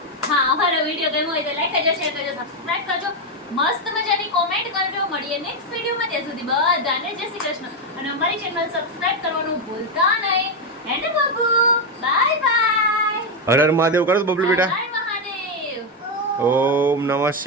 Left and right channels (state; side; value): normal; both; correlation 0.05